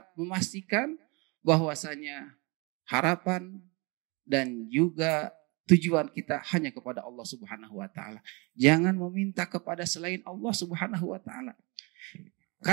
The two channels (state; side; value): quieter; left; 28.9 dB